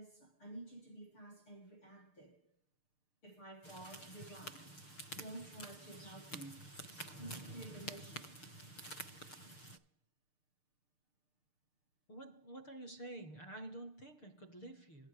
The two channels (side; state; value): right; late; 6.6 ms